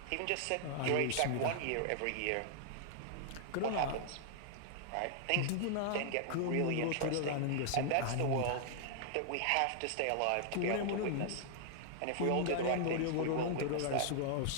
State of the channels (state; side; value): different; both; correlation -0.01